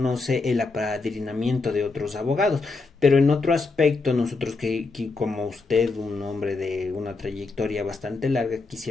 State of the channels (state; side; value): quieter; right; 3.9 dB